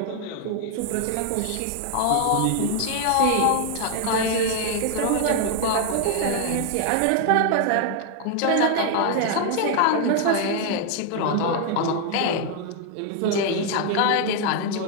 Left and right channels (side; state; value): both; different; correlation 0.00